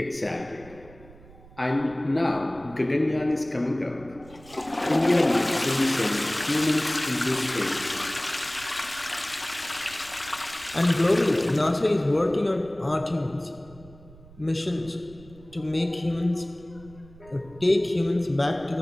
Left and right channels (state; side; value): noise; right; rumble, 22 dB below the sound